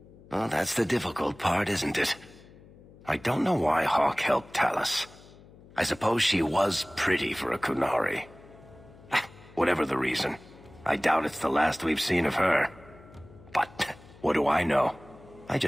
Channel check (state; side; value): noise; left; hum, 22 dB below the sound